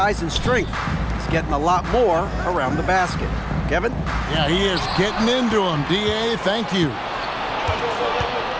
and strength. He's getting a lot more around the basket. Kevin? Yeah, he is getting into him. D.A., thank you.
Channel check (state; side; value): identical; both; correlation 1.00